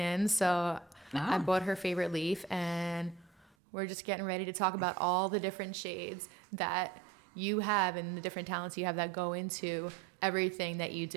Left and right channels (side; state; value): left; drops out; at 3.6 s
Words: in, so I bought her favorite leaf, and we're just getting ready to talk about all the different shades that you have and the different talents you have that go into everything that you